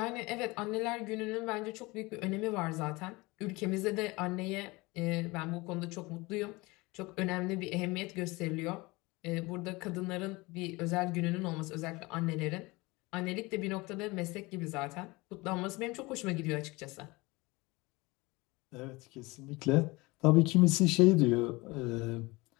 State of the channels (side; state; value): right; quieter; 23.3 dB